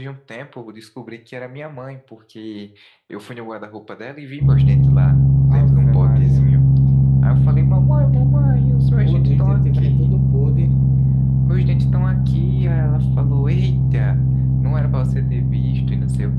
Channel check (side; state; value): both; identical; correlation 1.00